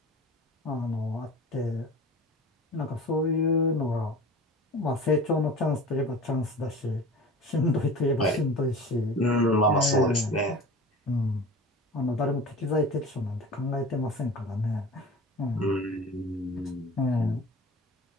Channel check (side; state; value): both; normal; correlation 0.37